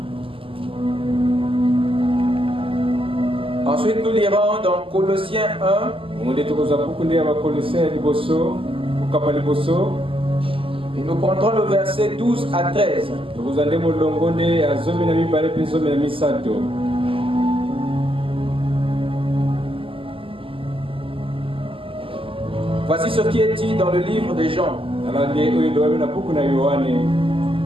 Ensuite, nous lirons dans Colossiens 1. Et nous prendrons le verset 12 à 13. Voici ce qui est dit dans le livre de Jean.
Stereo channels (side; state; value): left; late; 0.26 ms